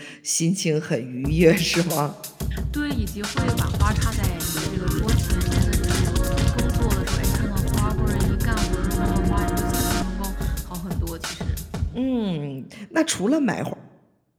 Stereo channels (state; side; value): identical; both; correlation 1.00